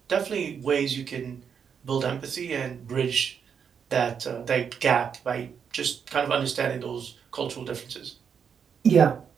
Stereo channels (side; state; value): left; quieter; 7.1 dB